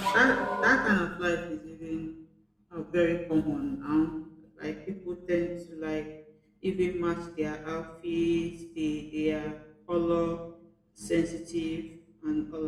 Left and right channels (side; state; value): both; identical; correlation 1.00